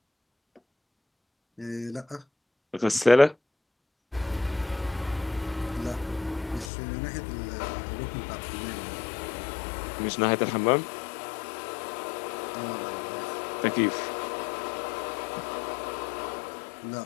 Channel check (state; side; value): drops out; right; at 6.7 s